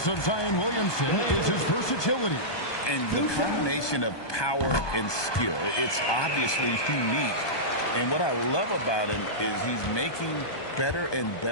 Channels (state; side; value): late; right; 1.2 ms